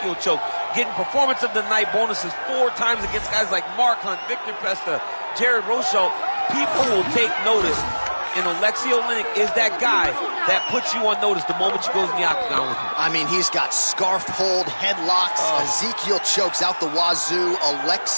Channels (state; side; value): inverted; both; correlation -1.00